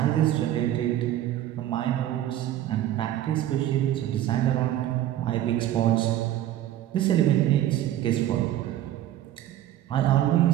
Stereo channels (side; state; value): left; quieter; 12.7 dB